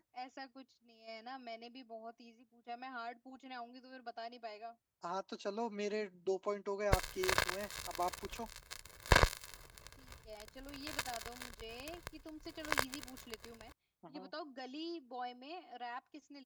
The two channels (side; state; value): both; identical; correlation 1.00